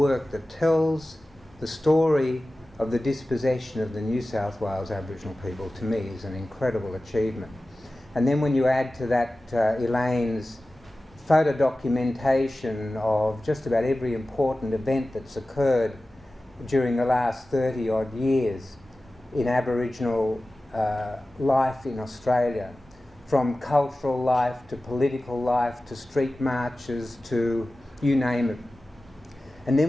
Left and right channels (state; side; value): normal; both; correlation 0.96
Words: that tells the story of the dispossession of the New South Wales Aboriginal people, to me, is an incredible achievement. And then when you add to that Elaine's photo documentation of just about every important event that's occurred during the last 30 odd years in Aboriginal life in Australia, from cultural life to political life to street marches to you name it. And